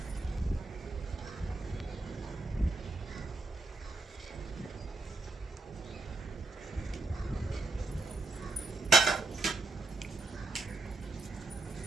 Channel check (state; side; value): quieter; left; 3.4 dB